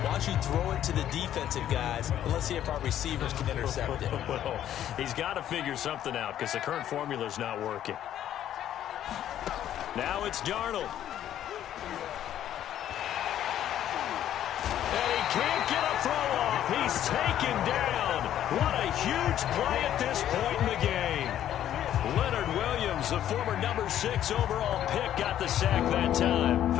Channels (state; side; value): quieter; right; 11.3 dB